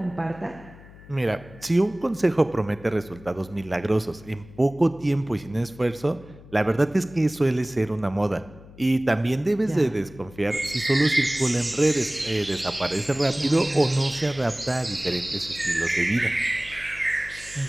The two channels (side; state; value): left; noise; hum, 20 dB below the sound